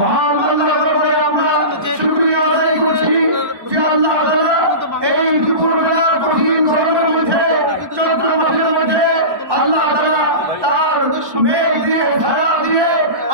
আল্লাহর দরবারে আমরা শুকরিয়া আদায় করছি যে আল্লাহ তাআলা এই দুপুরবেলার কঠিন গরমের মধ্যে, চৈত্র মাসের মধ্যে আল্লাহ তাআলা তার মেঘ দিয়ে, ছায়া দিয়ে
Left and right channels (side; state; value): left; late; 1.2 ms